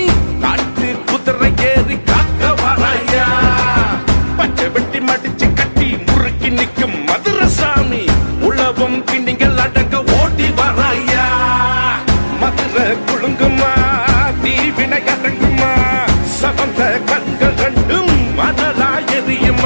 காட்டு குதிரை ஏறி காக்க வராயா பச்சை வெட்டி மடிச்சு கட்டி முறுக்கி நிற்கும் மதுரசாமி உள்ளவம் பின்னிகள் அடக்க ஓட்டி வராயா மதுரை குழுங்குமா தீவினை அடங்குமா சவந்த கண்கள் ரெண்டும் மணலா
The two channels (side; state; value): both; inverted; correlation -1.00